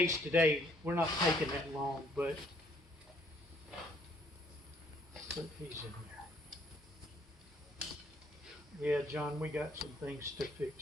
today, we're not taking that long, but put these in there. Yeah, John, we got some things to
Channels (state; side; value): normal; both; correlation 0.65